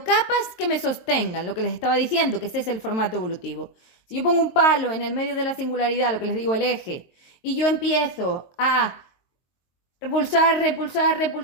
que me sostengan, lo que les estaba diciendo, que ese es el formato evolutivo. Si yo pongo un palo en el medio de la singularidad, lo que les digo, el eje, y yo empiezo a repulsar, repulsar,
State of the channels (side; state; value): right; late; 22 ms